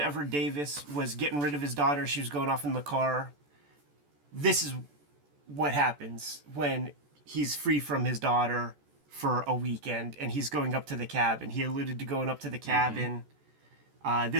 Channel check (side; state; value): left; late; 14 ms